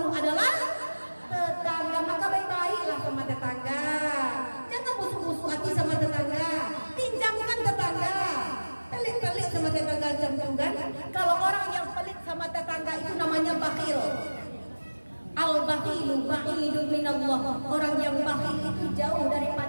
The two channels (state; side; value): inverted; both; correlation -1.00